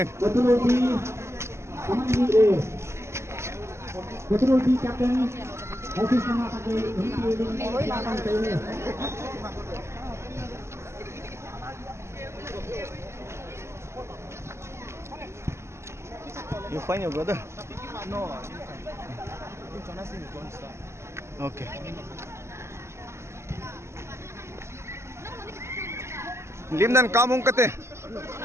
Betul di captain. Office nama pakai You find your brother? No. Okay. Lim dan kamung kate.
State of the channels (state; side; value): late; left; 0.13 ms